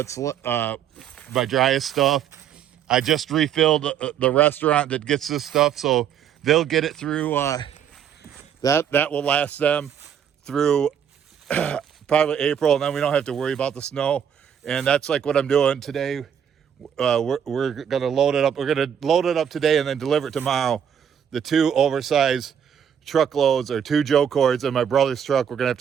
my driest stuff. I just refilled the restaurant that gets this stuff, so they'll get it through. That will last them through probably April, and then we don't have to worry about the snow. And that's like what I'm doing today. We're gonna load it up. We're gonna load it up today and then deliver it tomorrow. The 2 oversized truckloads or 2 Joe cords in my brother's truck. We're gonna have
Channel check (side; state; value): left; quieter; 8.6 dB